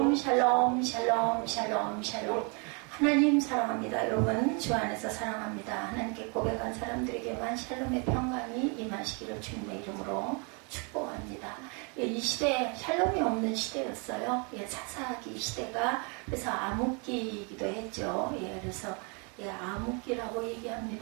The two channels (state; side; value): quieter; left; 34.4 dB